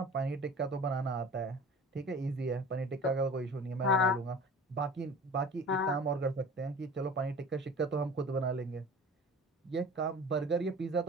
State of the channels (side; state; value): both; normal; correlation 0.41